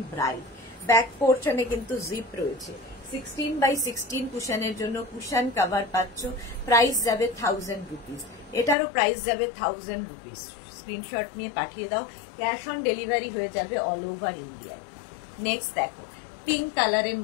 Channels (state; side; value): drops out; right; at 8.8 s